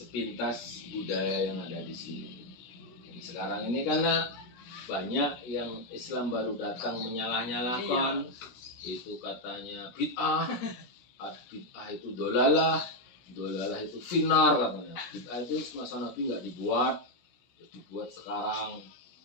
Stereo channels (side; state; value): right; late; 17 ms